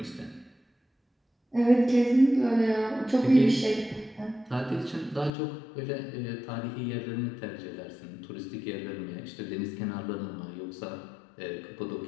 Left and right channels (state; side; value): drops out; right; at 5.3 s